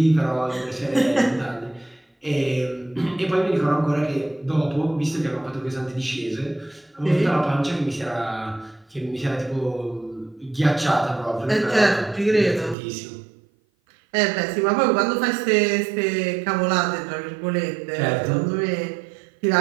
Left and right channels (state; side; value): drops out; left; at 12.8 s